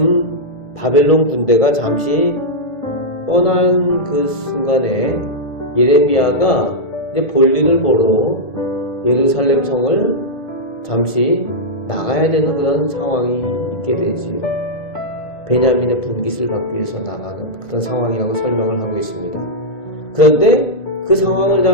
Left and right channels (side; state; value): right; late; 1.7 ms